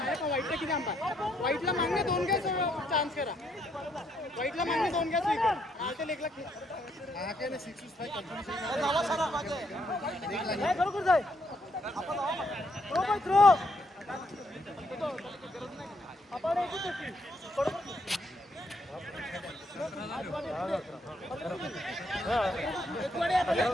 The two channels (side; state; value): both; normal; correlation 0.73